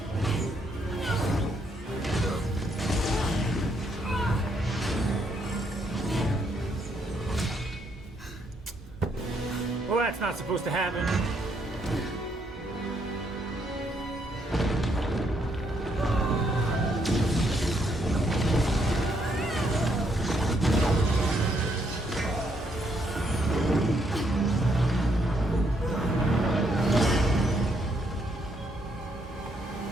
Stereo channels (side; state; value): both; normal; correlation 0.74